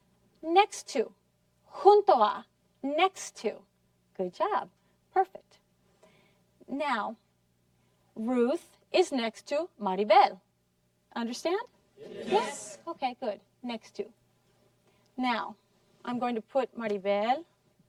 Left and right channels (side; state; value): both; identical; correlation 1.00